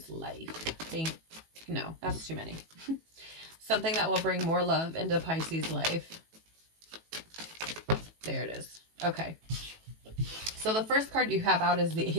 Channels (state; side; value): late; left; 18 ms